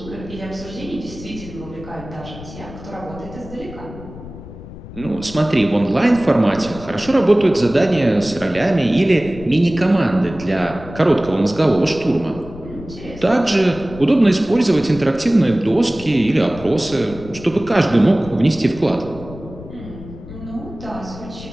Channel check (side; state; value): left; noise; rumble, 14 dB below the sound